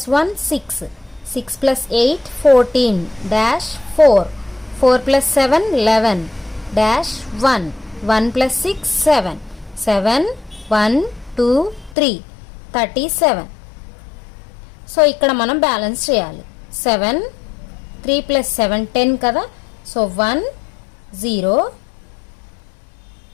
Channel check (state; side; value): drops out; right; at 12.0 s